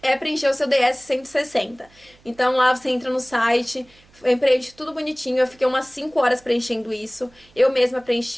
é preencher o seu DS-160. Então, lá você entra no site, preenche tudo bonitinho. Eu fiquei umas 5 horas preenchendo isso. Eu mesma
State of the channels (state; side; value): noise; right; hum, 29 dB below the sound